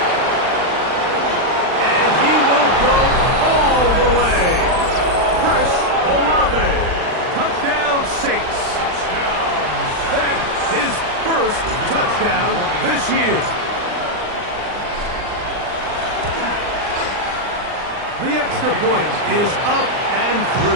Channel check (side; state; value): left; late; 39 ms